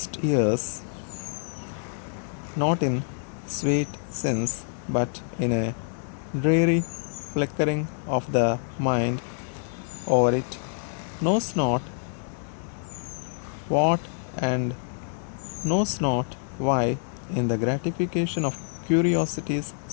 years, not in sweet sins, but in a dreary flickering of the mind over it knows not what and knows not why, in the gratification of curiosities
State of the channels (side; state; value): right; silent; digital silence